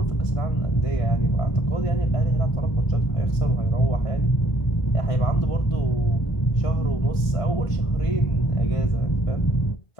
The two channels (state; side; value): late; right; 1.4 ms